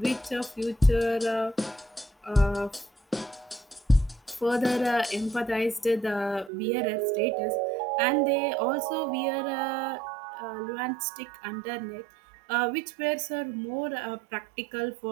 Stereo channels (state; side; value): drops out; left; at 6.5 s